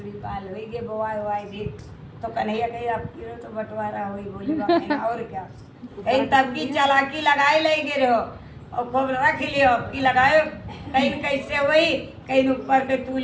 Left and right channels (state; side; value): identical; both; correlation 1.00